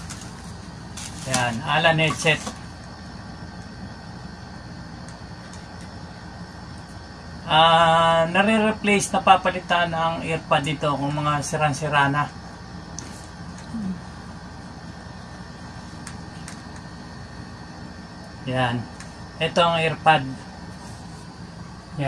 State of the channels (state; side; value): identical; both; correlation 1.00